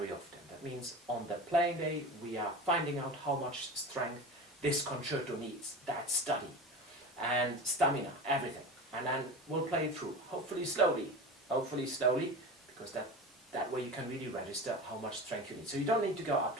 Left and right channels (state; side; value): normal; both; correlation 0.31